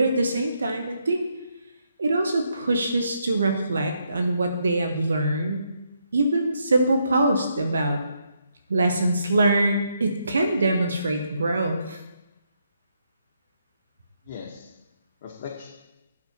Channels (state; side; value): inverted; both; correlation -0.77